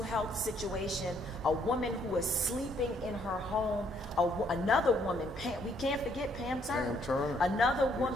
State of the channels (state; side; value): normal; both; correlation 0.69